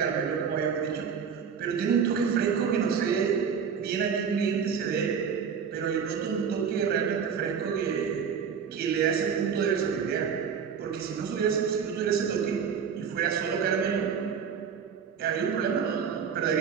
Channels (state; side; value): quieter; left; 6.8 dB